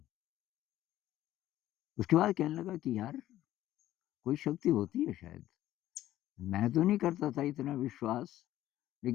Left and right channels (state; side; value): quieter; right; 13.8 dB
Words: उसके बाद कहने लगा कि यार कोई शक्ति होती है शायद। मैं तो नहीं करता था इतना विश्वास,